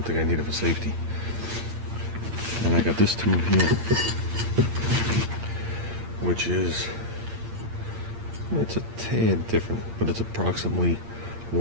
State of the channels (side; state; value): left; late; 8.7 ms